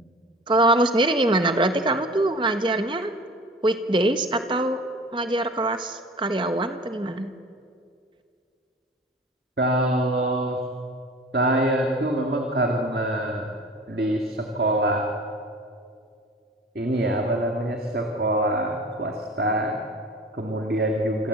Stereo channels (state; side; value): normal; both; correlation 0.41